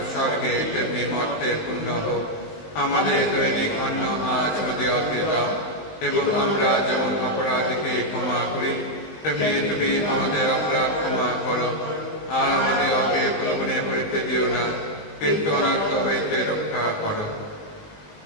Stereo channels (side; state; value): right; late; 19 ms